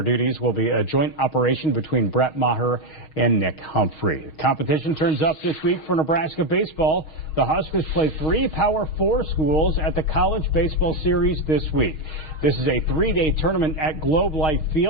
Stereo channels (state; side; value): late; right; 6.4 ms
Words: duties will be a joint operation between Brett Maher and Nick Humphrey. Competition turns up this week for Nebraska baseball. The Huskers play 3 Power 4 schools at the College Baseball Series this week. This is a 3-day tournament at Globe Life